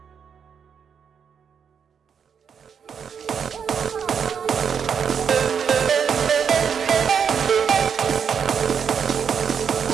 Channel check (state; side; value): quieter; left; 7.0 dB